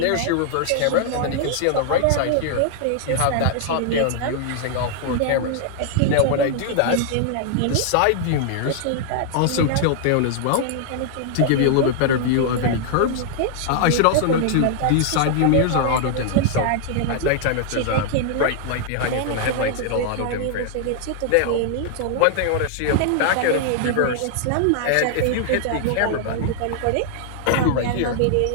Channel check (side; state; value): both; different; correlation -0.01